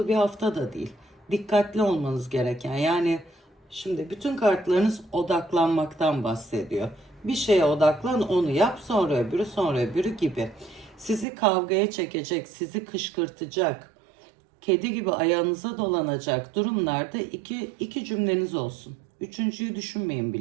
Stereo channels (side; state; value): left; drops out; at 11.2 s